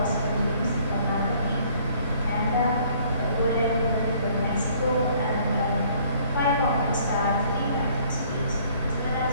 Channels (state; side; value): inverted; both; correlation -0.60